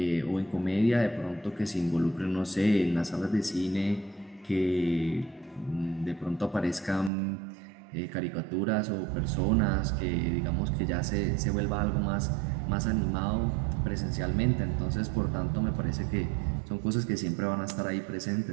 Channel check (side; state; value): left; drops out; at 7.1 s